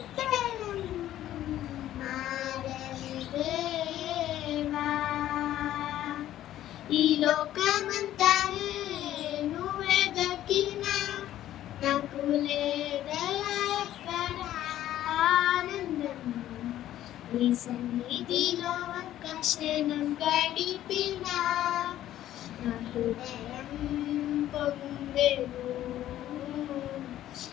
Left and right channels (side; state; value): right; quieter; 12.8 dB